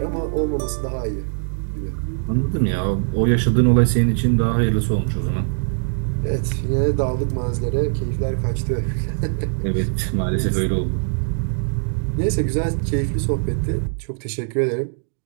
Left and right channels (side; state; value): left; silent; digital silence